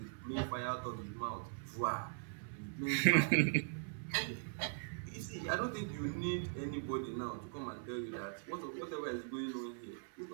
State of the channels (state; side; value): silent; left; 51 dB below the other